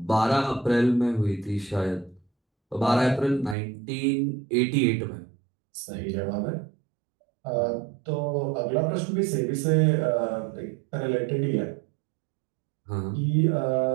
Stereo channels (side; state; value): left; drops out; at 3.6 s